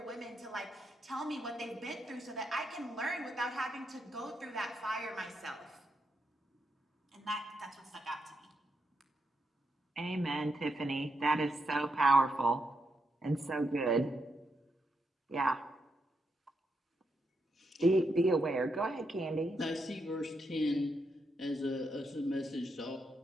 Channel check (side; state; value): both; normal; correlation 0.81